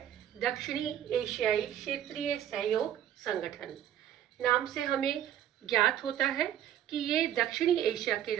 दक्षिणी एशियाई क्षेत्रीय सहयोग संगठन। नाम से हमें ज्ञात होता है कि ये दक्षिणी एशिया के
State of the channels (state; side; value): quieter; left; 10.9 dB